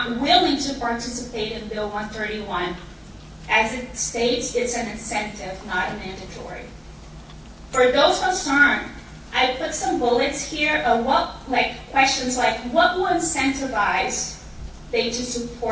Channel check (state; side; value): identical; both; correlation 1.00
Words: willing to participate in Bill 131. As it states, it's an incentive, not a mandatory. For those concerned, I put some bullets here of questions like what will incentivize they to